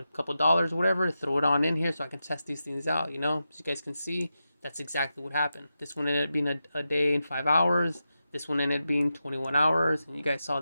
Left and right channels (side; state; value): both; inverted; correlation -0.89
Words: couple dollars, whatever, throw it on in here so I can test these things out, you know. As you guys can see, that's exactly what happened. This one ended up being a day and 5 hours. This one ended up being 21 hours. And you guys saw